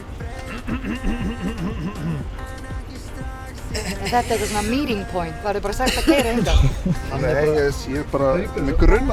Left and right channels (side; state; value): both; identical; correlation 1.00